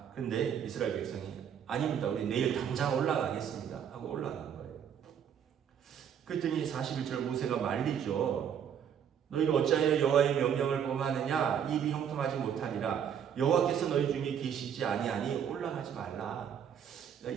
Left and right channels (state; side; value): quieter; left; 8.4 dB